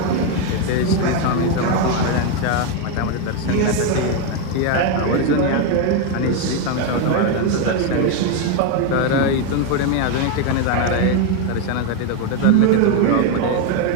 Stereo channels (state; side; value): different; both; correlation 0.02